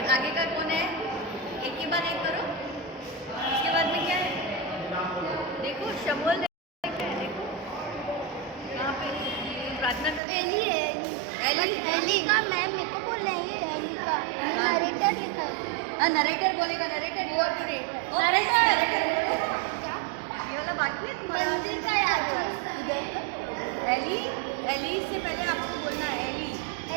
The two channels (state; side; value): drops out; left; at 10.2 s